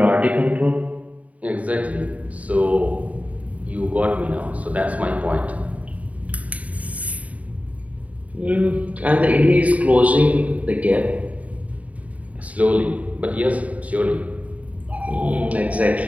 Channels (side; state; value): left; late; 0.069 ms